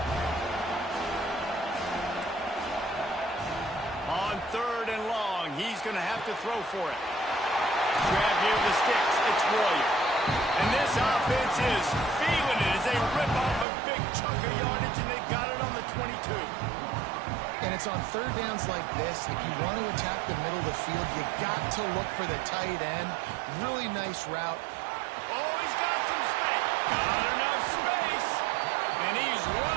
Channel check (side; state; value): left; drops out; at 13.7 s